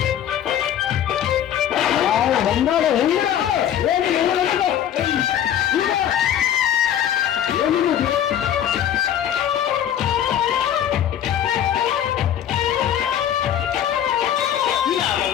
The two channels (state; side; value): quieter; right; 10.3 dB